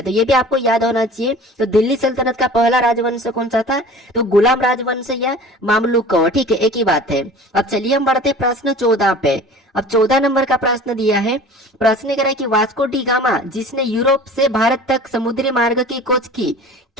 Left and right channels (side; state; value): both; normal; correlation 0.42